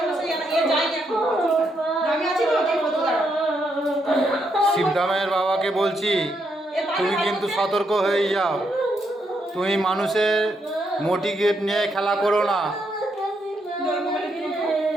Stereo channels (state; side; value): normal; both; correlation 0.78